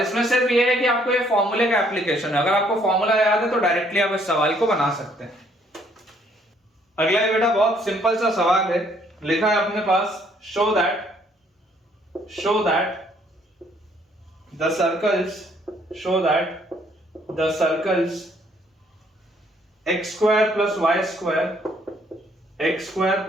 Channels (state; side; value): normal; both; correlation 0.65